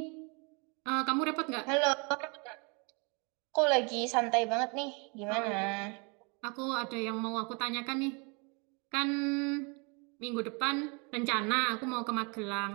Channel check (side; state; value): left; quieter; 33.0 dB